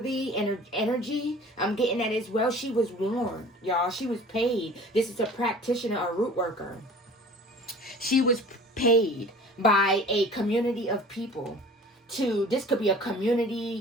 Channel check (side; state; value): both; normal; correlation 0.45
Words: energy. I'm getting that as well. She was warned, y'all. She was paid. This is a practitioner, a root worker. She was paid by a community of people to, this could be a